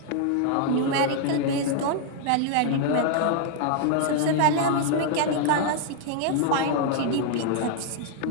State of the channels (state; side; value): different; both; correlation 0.00